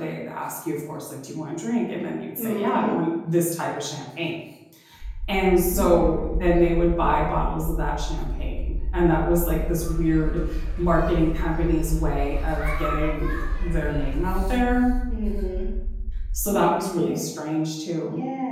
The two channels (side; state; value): both; identical; correlation 1.00